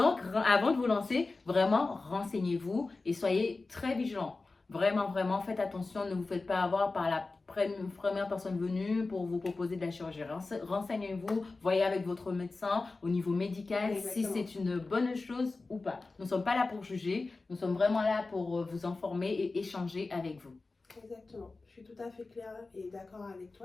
avant de vous lancer, vraiment, renseignez-vous et soyez très vigilants. Vraiment, vraiment, faites attention, ne vous faites pas avoir par la première personne venue pour vous proposer de la chirurgie. Renseignez-vous, voyez avec votre médecin au niveau médical si c'est une bonne chose ou pas. Nous ne sommes pas là pour juger, nous sommes vraiment là pour vous informer et échanger avec vous. Exactement, je suis tout à fait claire et d'accord avec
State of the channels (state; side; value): quieter; right; 3.6 dB